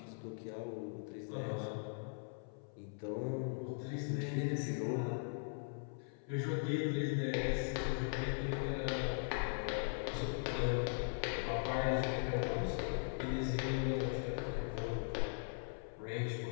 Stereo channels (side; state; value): right; silent; 51 dB below the other